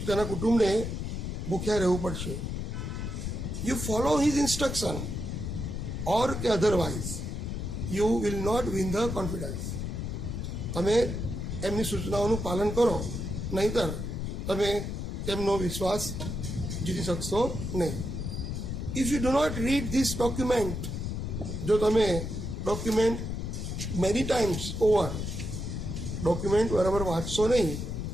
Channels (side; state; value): left; noise; rumble, 4 dB below the sound